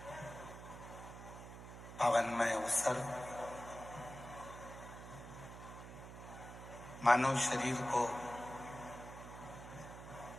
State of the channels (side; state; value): right; noise; hum, 12 dB below the sound